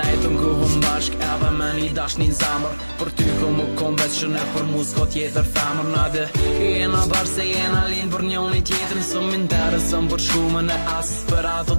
ku hum bashk edhe me një dash një zamër për ty ku mu kom veç që ne për mu s'ko tjetër femër nade jena bashk se jena linë për njoni tjetër së m'interesën për shumën e as për ato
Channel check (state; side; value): inverted; both; correlation -1.00